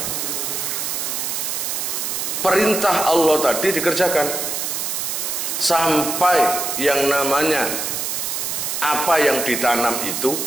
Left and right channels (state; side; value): noise; right; hiss, 2 dB below the sound